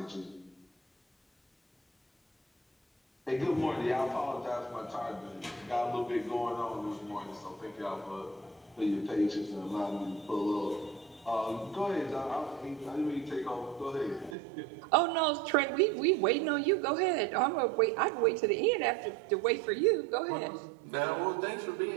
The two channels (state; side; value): drops out; left; at 14.4 s